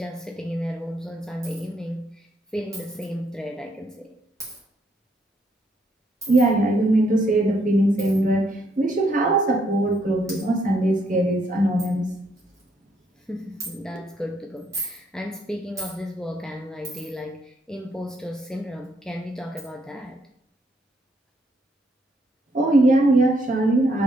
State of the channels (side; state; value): both; normal; correlation 0.73